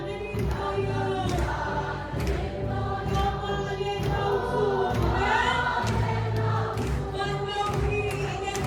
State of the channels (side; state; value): both; identical; correlation 1.00